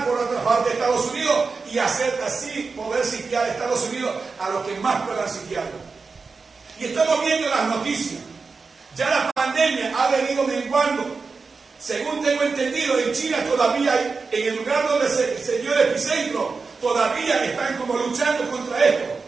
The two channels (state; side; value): quieter; left; 4.5 dB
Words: por otra parte de Estados Unidos y hacer así, poder sitiar a Estados Unidos a los que más puedan sitiarlo. Y estamos viendo las noticias. Ya la pandemia ha venido menguando. Según tengo entendido, en China todavía hay, en el lugar donde se dio el epicentro, todavía están como luchando contra esto.